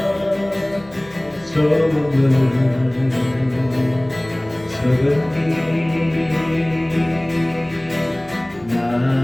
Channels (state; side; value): noise; left; hum, 24 dB below the sound